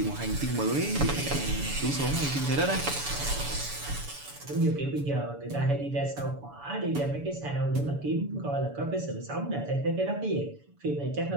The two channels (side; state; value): left; late; 7.0 ms